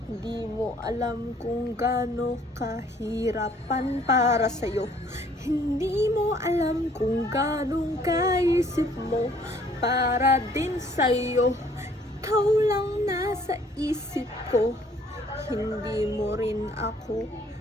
Hindi mo alam kung gaano kahirapan para sa'yo. Hindi mo alam kung gaano kaisip mo para din sa'yo. Ikaw lang nasa isip ko. Hindi mo rin ako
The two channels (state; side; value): normal; both; correlation 0.60